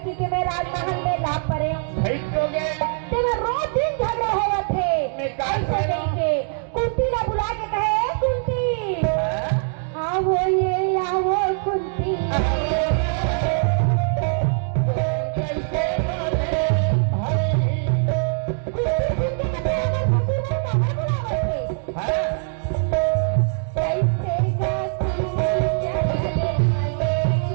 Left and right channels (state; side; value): silent; left; 64 dB below the other